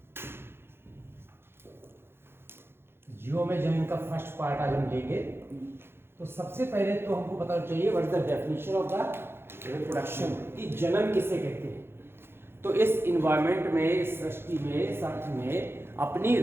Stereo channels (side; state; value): left; late; 0.11 ms